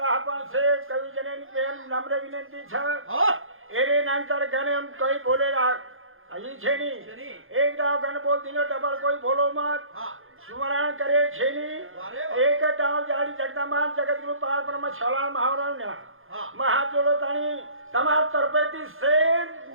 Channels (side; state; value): left; late; 0.60 ms